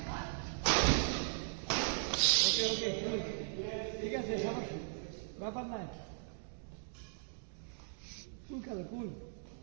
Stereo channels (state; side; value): silent; left; digital silence